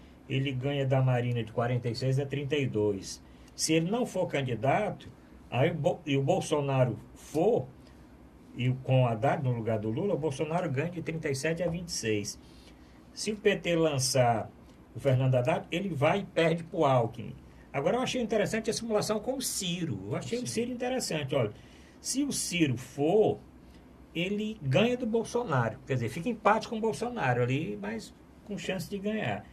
ele ganha da Marina de 46 a 32. Se ele não for candidato, aí e o Bolsonaro for, e com o Haddad no lugar do Lula, o Bolsonaro ganha de 37 a 26. Se o PT lançar o Fernando Haddad, ele vai e perde para o Alckmin. Agora, eu achei interessante a simulação com o Ciro. Eu achei o Ciro interessante. Olha, se o Ciro for, ele ganha do Bolsonaro. Quer dizer, fica empate com o Bolsonaro ali, mas com chance de ganhar.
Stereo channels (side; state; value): both; identical; correlation 1.00